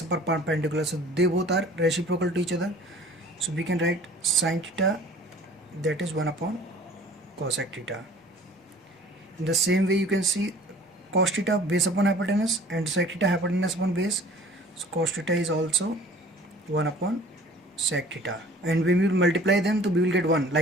upon perpendicular. So they both are reciprocal to each other. So we can write sine theta, that is 1 upon cosec theta. In the same way you can see cos theta base upon hypotenuse and sec theta hypotenuse upon base. So cos theta is also 1 upon sec theta, and when we will multiply them, so we will get 1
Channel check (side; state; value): both; normal; correlation 0.49